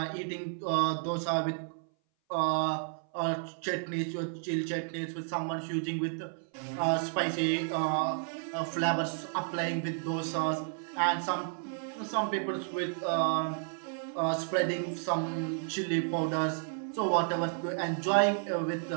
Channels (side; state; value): left; silent; 56 dB below the other